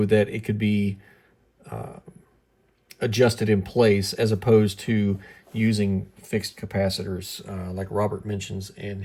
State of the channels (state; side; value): identical; both; correlation 1.00